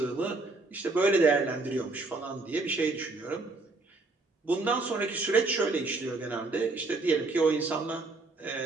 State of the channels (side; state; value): left; quieter; 3.3 dB